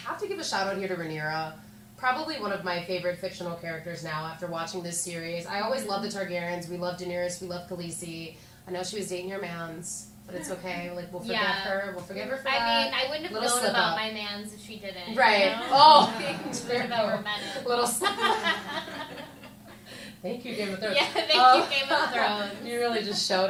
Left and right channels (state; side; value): identical; both; correlation 1.00